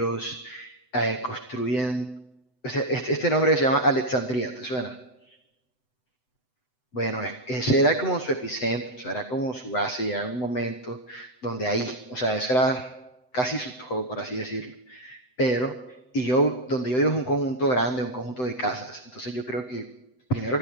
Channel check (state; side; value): late; right; 7.9 ms